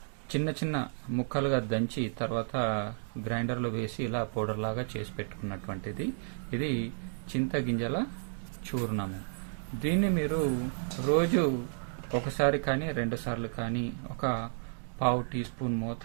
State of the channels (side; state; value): left; silent; digital silence